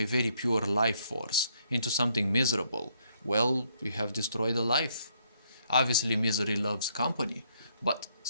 very pure life force into something miserable, well, you have destroyed a life. Obviously, misery loves company, but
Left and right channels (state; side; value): inverted; both; correlation -0.71